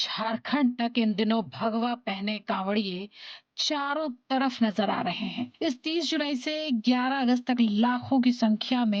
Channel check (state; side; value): identical; both; correlation 1.00